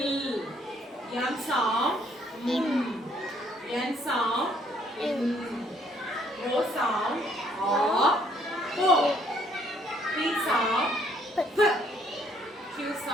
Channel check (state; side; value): normal; both; correlation 0.66